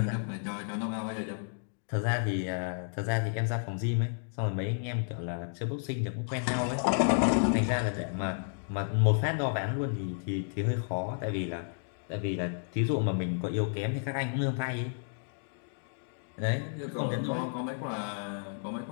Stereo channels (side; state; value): right; silent; digital silence